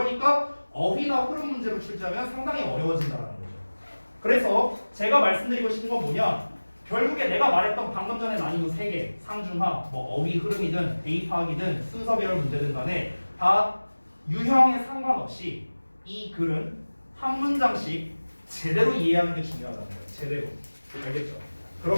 어휘나 흐름 문제로 출제하면 상당히 어려워진다는 거죠. 그래서 제가 말씀드리고 싶은 건 뭐냐? 결국에 내가 말했던 방금 전에 난이도 3개 상중하, 뭐 어휘 흐름이든 대입하기든 순서별 문제든 간에 다 유형에 상관없이 이 글은 한 문장씩 제대로 이해하는 게 중요하다는 거예요. 제대로. 알겠죠?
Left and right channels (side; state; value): both; inverted; correlation -1.00